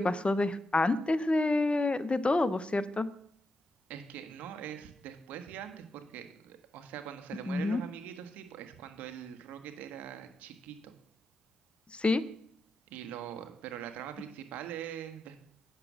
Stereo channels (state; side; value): normal; both; correlation 0.86